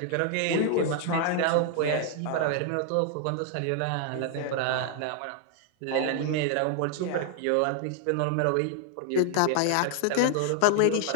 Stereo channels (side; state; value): both; different; correlation 0.00